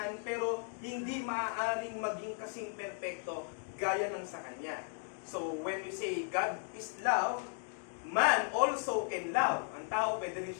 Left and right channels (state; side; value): silent; right; 54 dB below the other